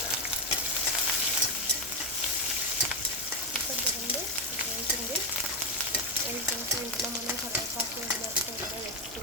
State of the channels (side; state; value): right; noise; hum, 20 dB below the sound